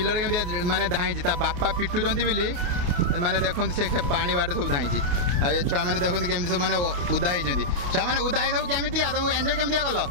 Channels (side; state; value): left; late; 28 ms